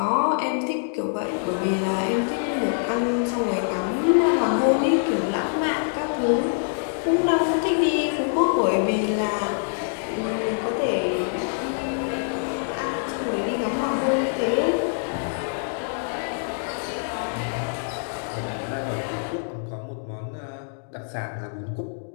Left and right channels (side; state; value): right; silent; digital silence